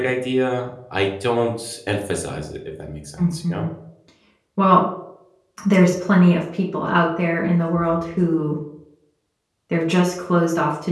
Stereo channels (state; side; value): identical; both; correlation 1.00